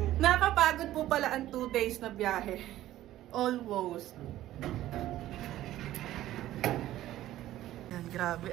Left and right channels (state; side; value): quieter; left; 14.1 dB